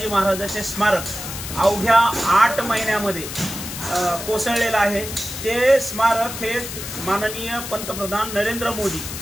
महाराजांचे स्मारक अवघ्या 8 महिन्यामध्ये कोसळलेलं आहे। ते स्मारक हे माननीय पंतप्रधान नरेंद्र मोदी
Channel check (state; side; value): noise; left; hiss, 8 dB below the sound